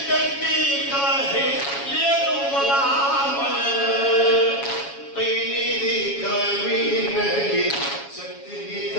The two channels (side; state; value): right; late; 7.2 ms